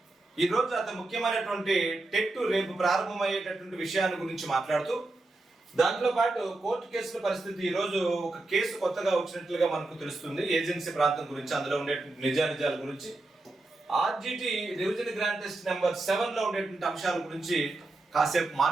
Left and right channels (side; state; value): left; quieter; 3.0 dB